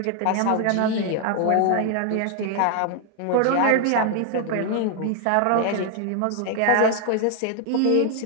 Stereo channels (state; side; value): different; both; correlation 0.00